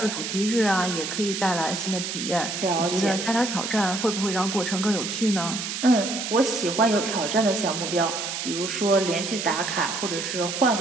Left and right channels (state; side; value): noise; right; hiss, 4 dB below the sound